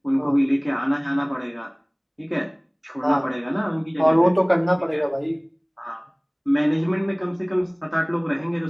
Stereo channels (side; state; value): both; identical; correlation 1.00